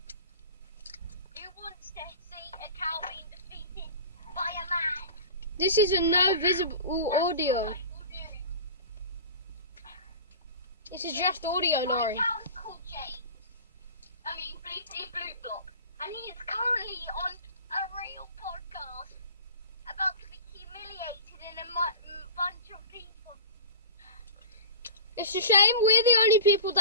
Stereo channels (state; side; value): inverted; both; correlation -0.35